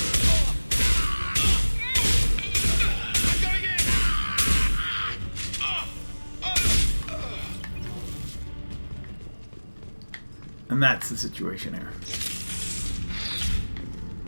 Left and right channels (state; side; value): inverted; both; correlation -1.00